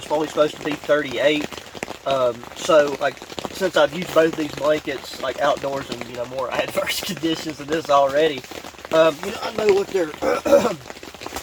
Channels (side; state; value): both; identical; correlation 1.00